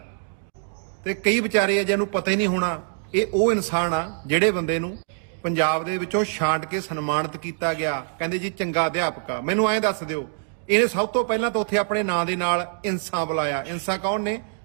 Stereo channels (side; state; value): left; silent; digital silence